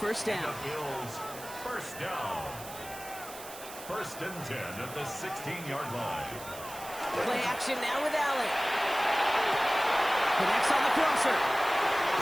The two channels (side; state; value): right; noise; hiss, 14 dB below the sound